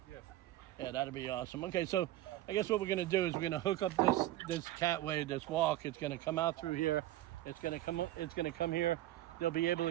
Yeah. Yeah, that'd be awesome. Okay, so I guess what we're gonna do is we're gonna hook up this catway, this walk. It's gonna come out through here. It's gonna come up. It's gonna come here. They'll be able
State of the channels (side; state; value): left; quieter; 15.0 dB